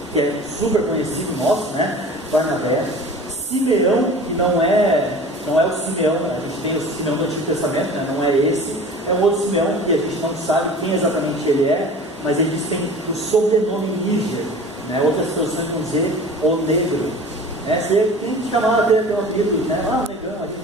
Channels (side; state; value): both; normal; correlation 0.40